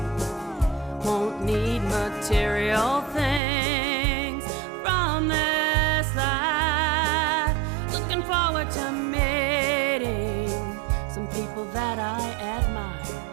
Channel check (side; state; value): left; drops out; at 3.4 s